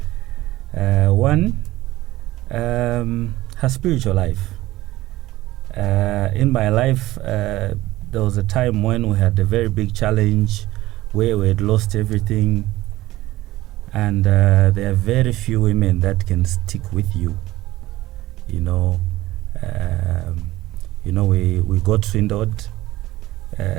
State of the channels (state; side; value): quieter; left; 17.0 dB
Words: One, her spiritual life. In my life, there was a time when we had a very big challenge where we had lost everything, and there are very few women that can stick with you. We got swindled